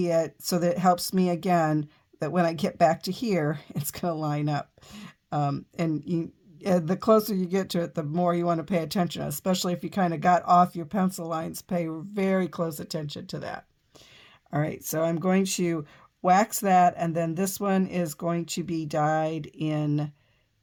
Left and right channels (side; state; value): both; identical; correlation 1.00